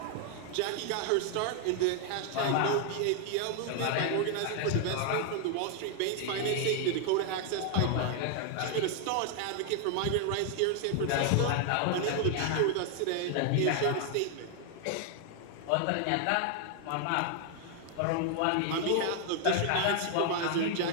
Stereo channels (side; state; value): both; different; correlation 0.00